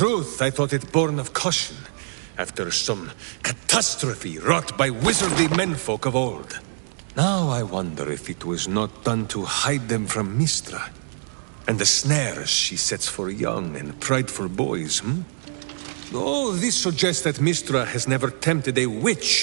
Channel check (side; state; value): left; silent; digital silence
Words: I thought it born of caution, after some catastrophe wrought by wizardly menfolk of old. Now I wonder if it was not done to hide them from Mystra, and the snares she sets for young and prideful boys, Oh, this suggests that Mystra has never tempted a